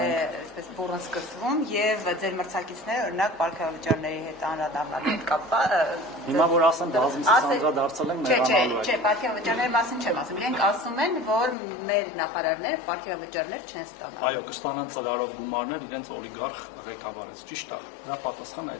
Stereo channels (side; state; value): right; drops out; at 11.6 s